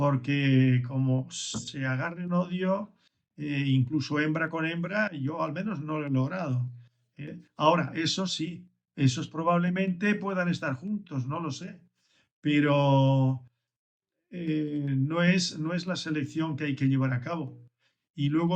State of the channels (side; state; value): both; identical; correlation 1.00